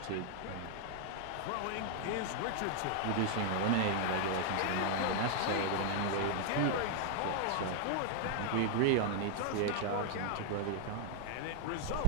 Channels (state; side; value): different; both; correlation 0.00